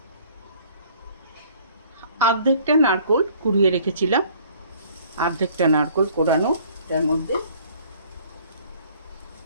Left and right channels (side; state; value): both; inverted; correlation -0.55